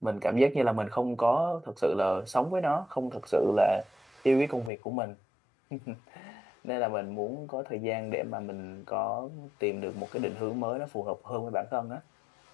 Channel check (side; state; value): right; drops out; at 4.7 s